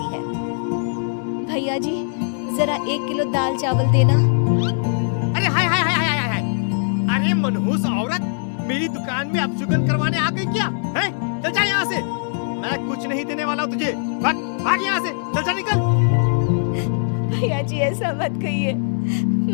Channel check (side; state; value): right; silent; digital silence